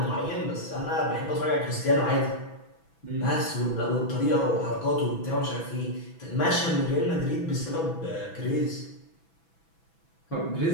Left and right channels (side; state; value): right; late; 6.1 ms